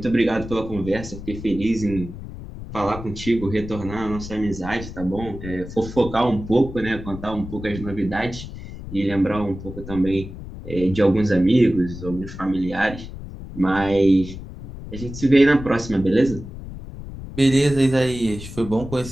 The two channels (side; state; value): left; noise; rumble, 11 dB below the sound